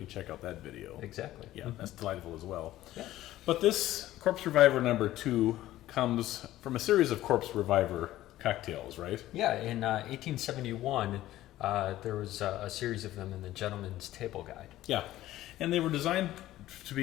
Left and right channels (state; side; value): quieter; right; 14.8 dB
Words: check out that video. Exactly. Yeah, that's delightful as well. Yeah. But this Corpse Reviver number 2 comes from a series of Corpse Reviver cocktails, right? Yeah, in 1871, there was a series of them in the Gentleman's Table Guide. Yeah, and they were designed to